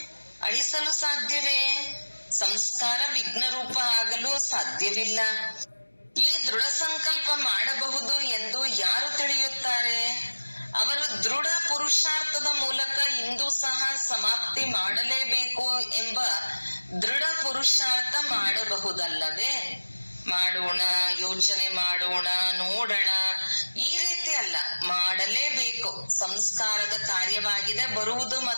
ಅಳಿಸಲು ಸಾಧ್ಯವೇ? ಸಂಸ್ಕಾರ ವಿಘ್ನ ರೂಪ ಆಗಲು ಸಾಧ್ಯವಿಲ್ಲ. ಈ ದೃಢ ಸಂಕಲ್ಪ ಮಾಡಬಹುದು ಎಂದು ಯಾರು ತಿಳಿಯುತ್ತಾರೆ? ಅವರು ದೃಢ ಪುರುಷಾರ್ಥದ ಮೂಲಕ ಇಂದು ಸಹ ಸಮಾಪ್ತಿ ಮಾಡಲೇಬೇಕು ಎಂಬ ದೃಢ ಪುರುಷಾರ್ಥ ಮಾಡಬಹುದಲ್ಲವೇ? ಮಾಡೋಣ, ಯೋಚನೆ ಮಾಡೋಣ, ನೋಡೋಣ, ಈ ರೀತಿ ಅಲ್ಲ, ಮಾಡಲೇಬೇಕು. ಸಂಸ್ಕಾರದ ಕಾರ್ಯವಾಗಿದೆ ಬರುವುದು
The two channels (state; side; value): inverted; both; correlation -1.00